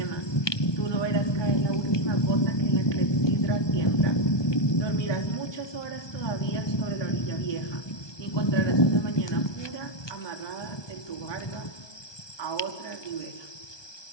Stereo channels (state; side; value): late; right; 1.2 ms